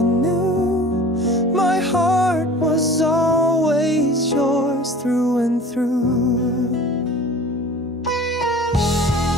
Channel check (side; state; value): both; normal; correlation 0.43